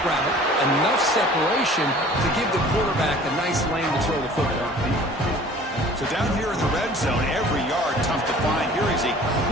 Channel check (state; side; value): normal; both; correlation 0.48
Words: route, enough separation to give the quarterback a nice lane to throw the football. So down here in the red zone, every yard tough to find. Here is a